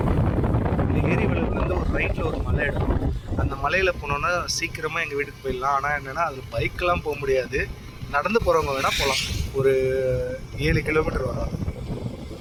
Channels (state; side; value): identical; both; correlation 1.00